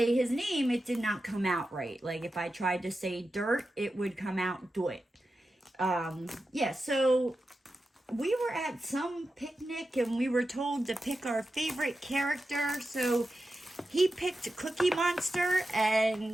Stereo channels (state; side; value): normal; both; correlation 0.91